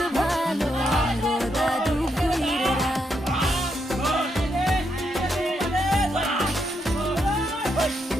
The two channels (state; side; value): normal; both; correlation 0.79